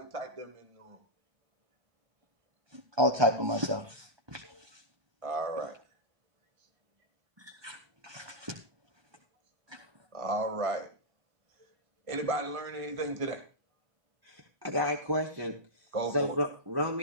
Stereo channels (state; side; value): late; left; 1.2 ms